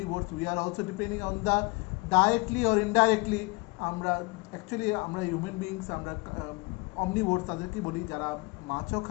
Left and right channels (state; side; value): quieter; right; 26.6 dB